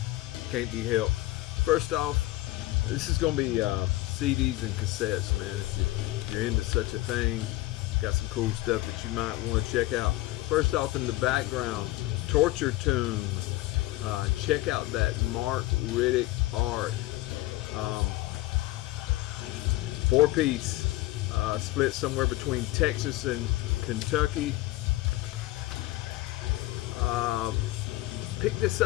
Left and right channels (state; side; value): quieter; right; 18.0 dB